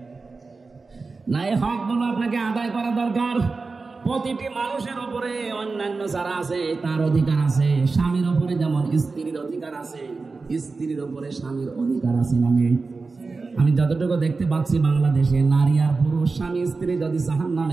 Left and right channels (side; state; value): left; quieter; 4.0 dB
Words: না, এই হকগুলো আপনাকে আদায় করা দরকার। প্রতিটি মানুষের উপরে অন্যান্য যারা আছে তার অধিকার আছে। স্বামীর উপরে যেমন স্ত্রীর অধিকার আছে, স্ত্রীর উপরে স্বামীর অধিকার আছে না নেই? আমি যতটুকু দেখতে পাচ্ছি বাংলাদেশে নারী আর পুরুষ, স্বামী স্ত্রী যদি